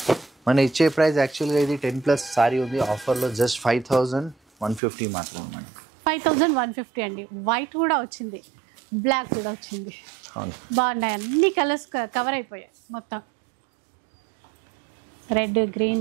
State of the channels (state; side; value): drops out; left; at 4.8 s